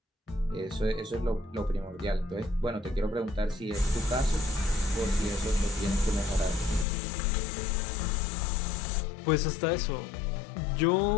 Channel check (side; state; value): right; drops out; at 6.9 s